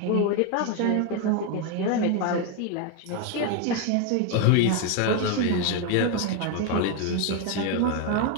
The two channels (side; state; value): both; different; correlation 0.01